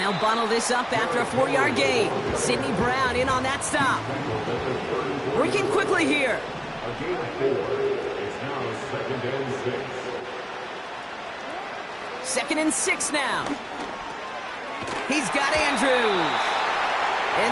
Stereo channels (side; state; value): both; identical; correlation 1.00